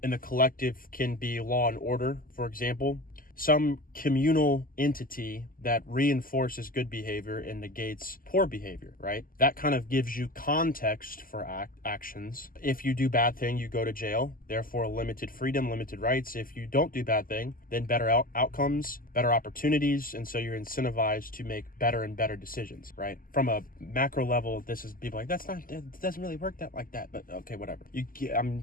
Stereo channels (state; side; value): late; right; 0.41 ms